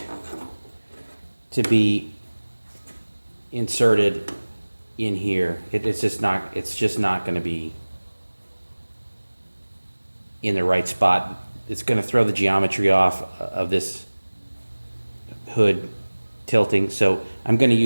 to be inserted in here. It's just not going to be in the right spot. It's going to throw the geometry off of this hood tilting. So I'm going to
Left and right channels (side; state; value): both; inverted; correlation -1.00